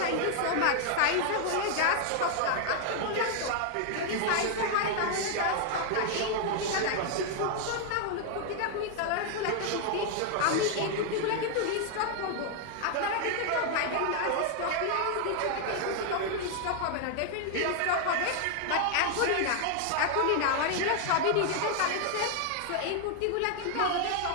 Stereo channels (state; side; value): different; both; correlation 0.00